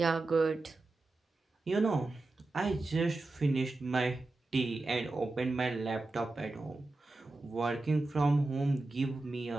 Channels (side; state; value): left; quieter; 3.1 dB